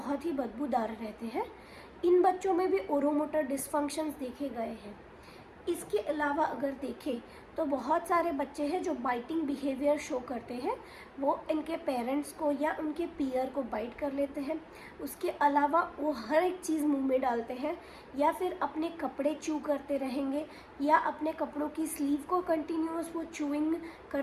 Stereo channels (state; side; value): identical; both; correlation 1.00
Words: ही बदबूदार रहते हैं। इन बच्चों में भी ओरोमोटर डिसफंक्शंस देखे गए हैं। इसके अलावा अगर देखें तो बहुत सारे बच्चे हैं जो बाइटिंग बिहेवियर शो करते हैं, वो इनके पेरेंट्स को या उनके पीयर को बाइट कर लेते हैं। उसके अलावा वो हर एक चीज़ मुंह में डालते हैं, या फिर अपने कपड़े च्यू करते रहेंगे, या अपने कपड़ों की स्लीव को कंटिन्यूअस वो च्यूइंग